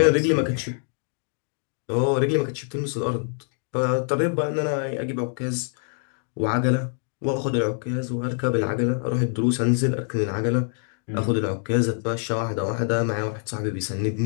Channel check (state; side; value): silent; right; 57 dB below the other